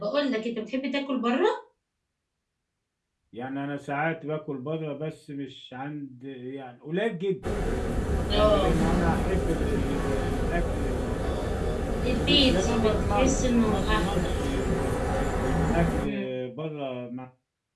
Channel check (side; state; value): both; identical; correlation 1.00